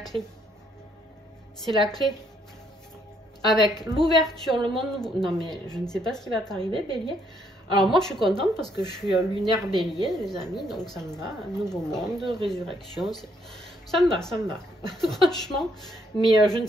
C'est la clé. Avec l'ouverture, le monde nouveau. Non, mais je ne sais pas ce qui va t'arriver, Bélier. Alors, moi, je suis contente parce que je suis lunaire Bélier, les amis. Donc, ça me va. Un nouveau monde, résurrection. Ça me va, ça me va. Franchement. Mais je ne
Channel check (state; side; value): normal; both; correlation 0.71